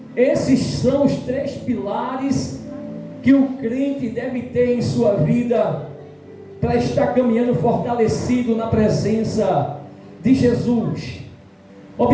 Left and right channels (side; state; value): both; identical; correlation 1.00